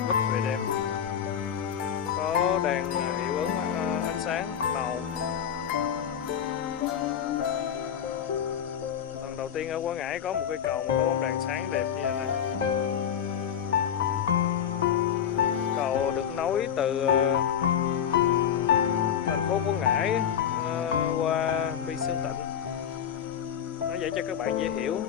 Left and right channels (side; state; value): right; quieter; 8.8 dB